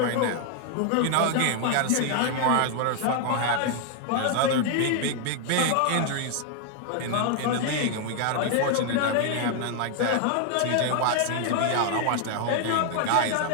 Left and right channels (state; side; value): different; both; correlation 0.00